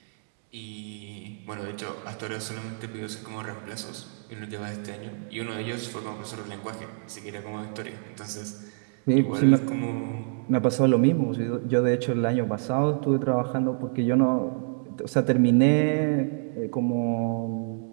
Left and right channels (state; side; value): silent; left; digital silence